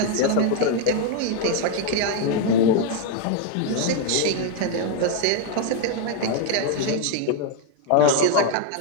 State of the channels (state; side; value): different; both; correlation 0.01